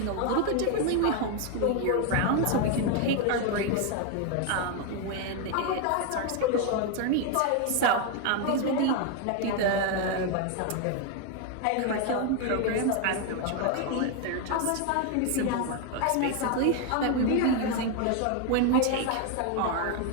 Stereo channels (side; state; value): both; different; correlation 0.01